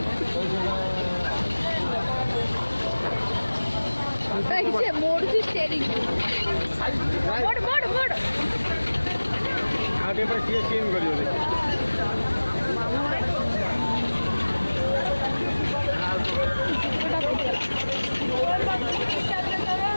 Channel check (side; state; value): both; inverted; correlation -1.00